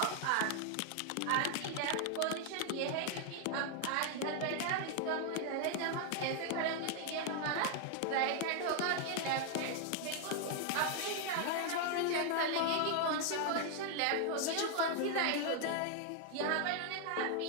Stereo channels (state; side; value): different; both; correlation 0.00